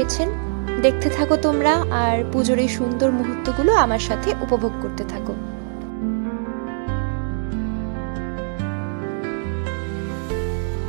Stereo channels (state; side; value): silent; left; digital silence